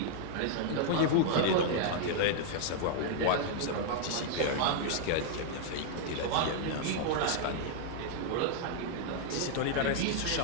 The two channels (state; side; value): different; both; correlation -0.01